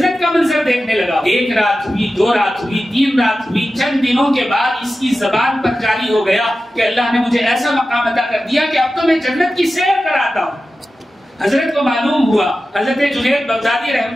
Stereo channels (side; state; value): both; normal; correlation 0.94